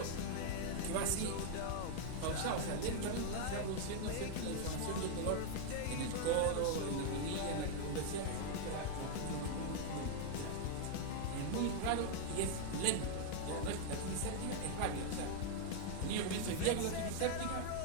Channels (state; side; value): different; both; correlation 0.00